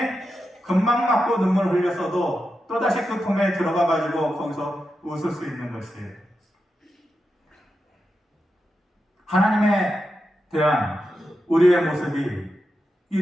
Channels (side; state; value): both; normal; correlation 0.89